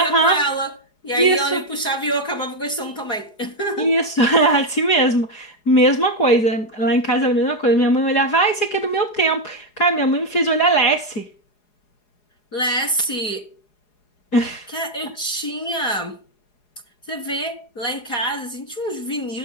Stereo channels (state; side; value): late; right; 4.8 ms